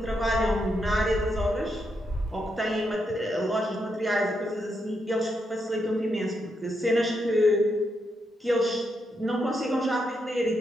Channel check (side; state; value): both; normal; correlation 0.81